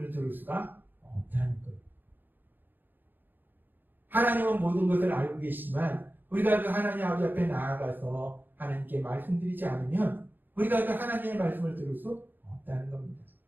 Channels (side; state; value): left; late; 0.091 ms